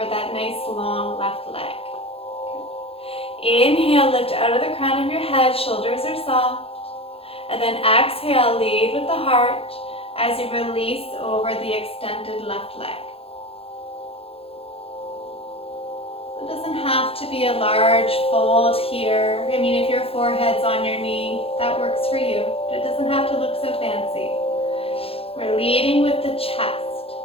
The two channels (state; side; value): late; right; 0.28 ms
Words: that nice long left leg. Good. Inhale, lift out of the crown of your head, shoulders are soft. And then exhale, lead with the heart as you release over the extended left leg. It doesn't have to be a large fold here. I mean, if your forehead's on your knee, that works for you. But it doesn't have to look so fancy. We're leading with the chest,